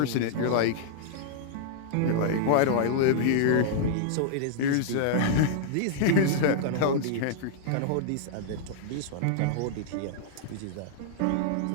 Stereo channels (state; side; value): different; both; correlation -0.01